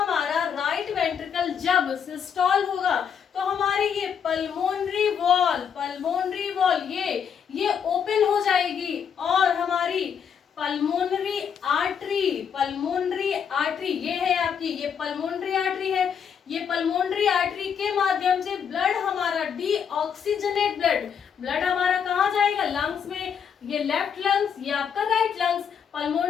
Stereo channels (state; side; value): quieter; right; 7.5 dB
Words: राइट वेंट्रिकल जब सिस्टोल होगा तो हमारी ये पल्मोनरी वॉल ये ओपन हो जाएगी और हमारी पल्मोनरी आर्टरी ये है आपकी, ये पल्मोनरी आर्टरी है। ये पल्मोनरी आर्टरी के माध्यम से ब्लड हमारा डीऑक्सीजनेट ब्लड हमारा कहाँ जाएगा? लंग्स में। ये लेफ्ट लंग्स, ये आपका राइट लंग्स।